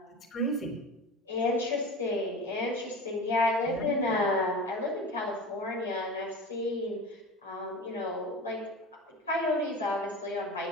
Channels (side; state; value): both; normal; correlation 0.31